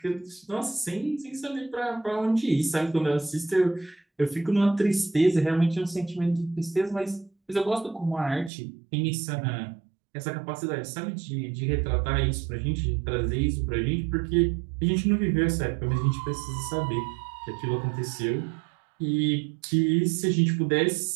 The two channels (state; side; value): drops out; left; at 8.5 s